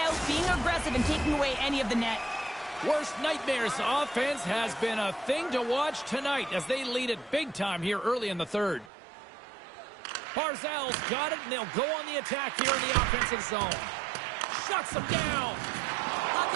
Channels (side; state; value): left; drops out; at 8.9 s